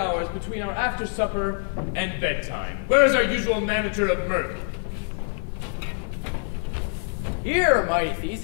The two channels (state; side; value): silent; right; 56 dB below the other